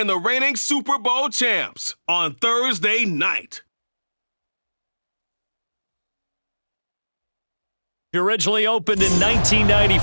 the reigning Super Bowl champs on Thursday night. Originally opened in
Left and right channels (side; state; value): both; inverted; correlation -1.00